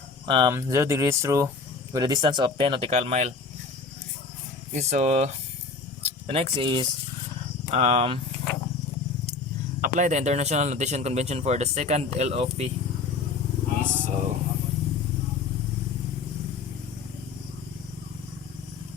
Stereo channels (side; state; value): right; quieter; 4.5 dB